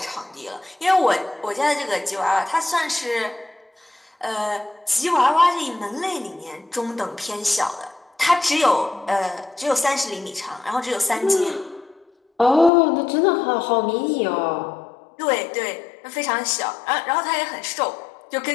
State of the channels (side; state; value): right; drops out; at 12.7 s